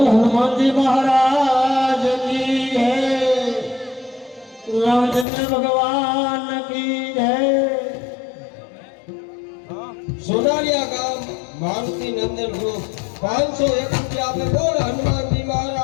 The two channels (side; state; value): right; drops out; at 5.2 s